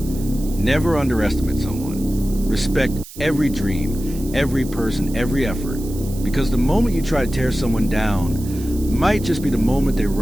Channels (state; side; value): noise; right; hiss, 17 dB below the sound